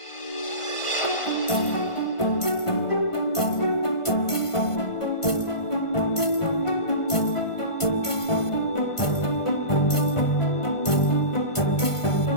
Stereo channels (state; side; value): late; right; 1.5 ms